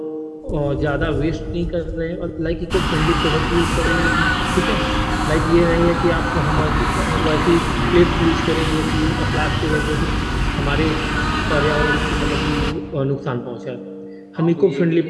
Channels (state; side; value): identical; both; correlation 1.00